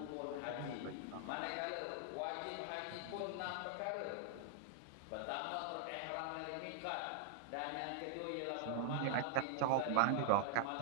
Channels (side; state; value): both; different; correlation -0.01